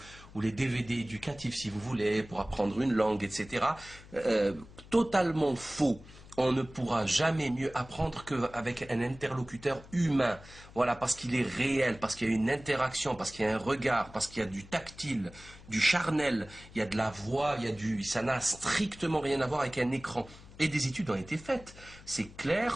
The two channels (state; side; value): noise; left; hum, 20 dB below the sound